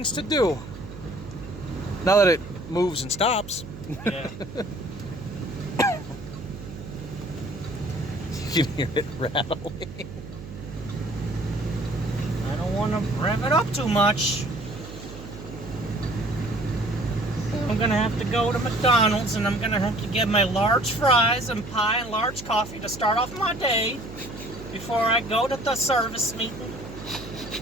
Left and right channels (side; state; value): right; noise; hum, 14 dB below the sound